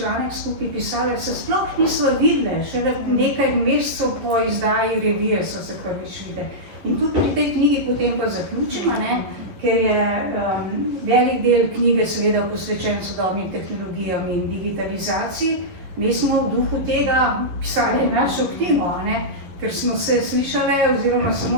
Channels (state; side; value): late; left; 11 ms